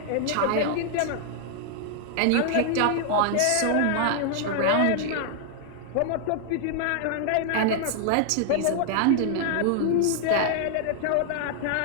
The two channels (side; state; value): both; different; correlation 0.00